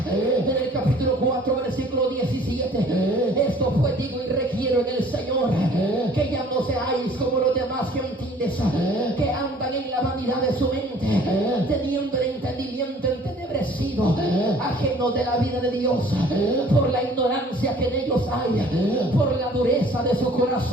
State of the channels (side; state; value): both; normal; correlation 0.53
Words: en el capítulo 4 versículo 17: esto pues digo y requiero en el Señor, que ya no seáis como los demás gentiles, que andan en la vanidad de su mente, teniendo el entendimiento entenebrecido, ajeno de la vida de Dios, por la ignorancia que en ellos hay, por la dureza de su